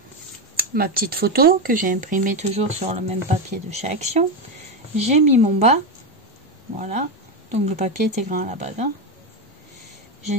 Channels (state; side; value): normal; both; correlation 0.11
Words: ma petite photo que j'ai imprimée toujours sur le même papier de chez Action. J'ai mis mon bas. Voilà, donc le papier était grand à la base, hein. Je